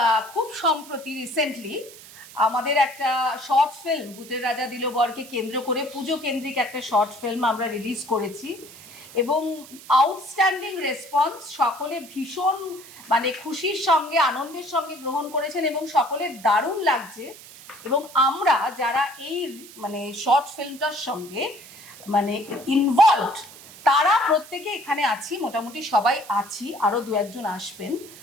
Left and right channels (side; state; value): right; noise; hiss, 18 dB below the sound